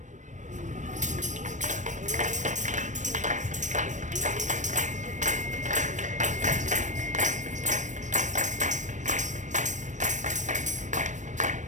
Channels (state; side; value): late; left; 0.35 ms